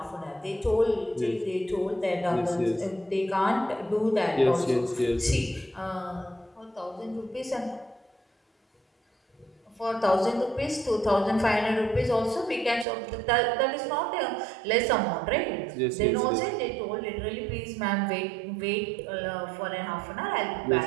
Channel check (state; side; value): drops out; left; at 12.9 s